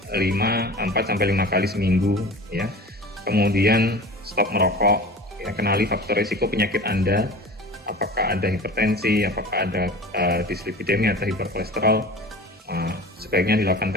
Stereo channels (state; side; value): normal; both; correlation 0.37